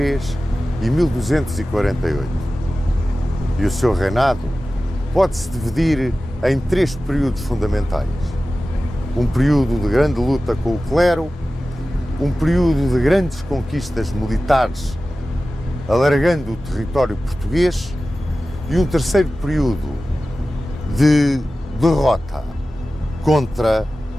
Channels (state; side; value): normal; both; correlation 0.95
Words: e 1248. E o seu reinado pode-se dividir em três períodos fundamentais. Um período de grande luta com o clero, um período de grandes conquistas militares, alargando o território português, e um terceiro período de derrota contra